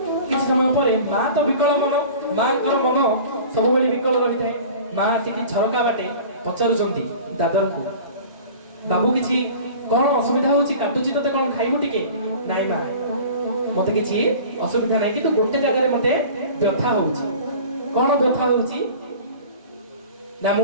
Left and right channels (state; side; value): inverted; both; correlation -0.41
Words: କିଛି ସମୟ ପରେ ମା ତ ବିକଳ ମନ ମାଙ୍କର ମନ ସବୁବେଳେ ବିକଳ ରହିଥାଏ ମା ଆସିକି ଝରକା ବାଟେ ପଚାରୁଛନ୍ତି ଦାଦରଙ୍କୁ ବାବୁ କିଛି କଣ ଅସୁବିଧା ହଉଛି କାଟୁଛି ତତେ କଣ ଖାଇବୁ ଟିକେ ନାଇଁ ମା ମତେ କିଛି ଅସୁବିଧା ନାହିଁ କିନ୍ତୁ ଗୋଟେ ଜାଗାରେ ମତେ ବ୍ୟଥା ହଉଛି କଣ ବ୍ୟଥା ହଉଛି ନା